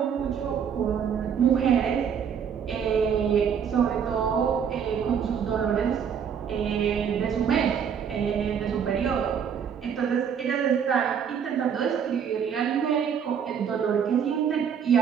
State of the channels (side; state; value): left; quieter; 7.6 dB